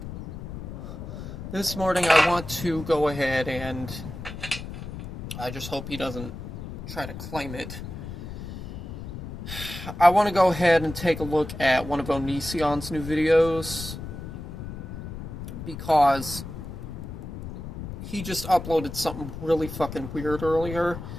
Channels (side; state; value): left; noise; rumble, 9 dB below the sound